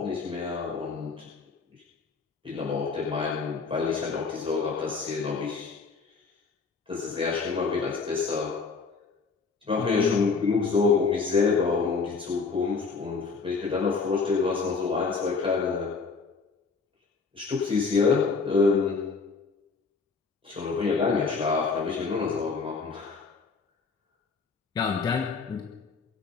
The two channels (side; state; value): right; quieter; 4.7 dB